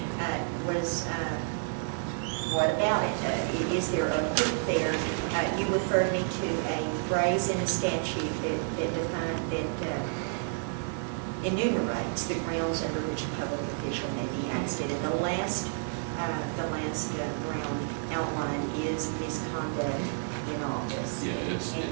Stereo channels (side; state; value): left; silent; 58 dB below the other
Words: was what about it? Is there a hook there? You referred me to a phrase in a statute that enumerates the grounds under which a public official may be ousted. And the last ground outlined is misconduct in office. Yeah,